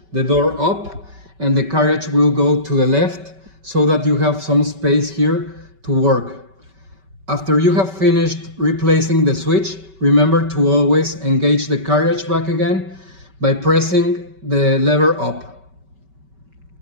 the door up and the carriage will go to the left so that you have some space here to work. After you have finished replacing the switch, remember to always engage the carriage back again by pressing the lever up.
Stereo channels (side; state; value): left; late; 5.2 ms